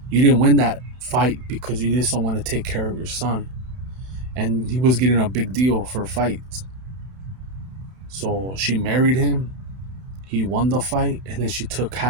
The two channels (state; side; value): late; left; 31 ms